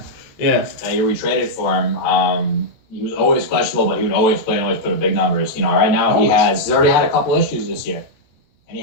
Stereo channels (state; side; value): late; right; 13 ms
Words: you retraded for him. He was always questionable, but he would always play and always put up big numbers. Right now he's already had a couple issues this year, and he